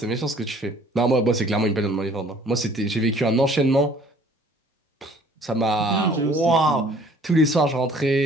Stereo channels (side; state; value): both; normal; correlation 0.55